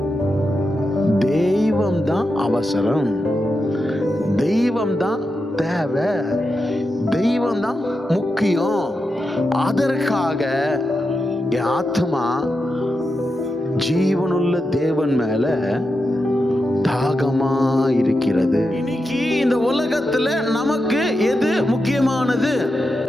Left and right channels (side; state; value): both; normal; correlation 0.88